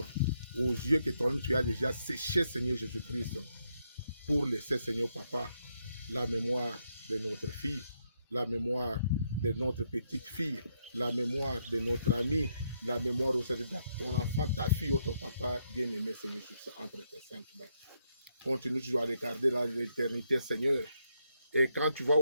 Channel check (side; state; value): both; inverted; correlation -0.78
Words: aux yeux que toi-même tu as déjà séché Seigneur Jésus-Christ pour laisser Seigneur Papa la mémoire de notre fille, la mémoire de notre petite fille, la mémoire de notre ami, la mémoire aussi de ton enfant, ta fille ou ton papa bien-aimé, Seigneur Jésus, entre tes saintes mains. Continue toujours à regarder l'éternité, Seigneur. Et quand tu vas